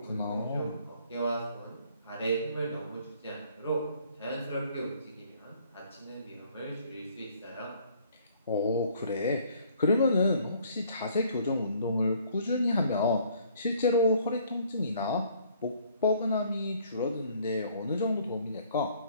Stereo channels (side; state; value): both; inverted; correlation -0.60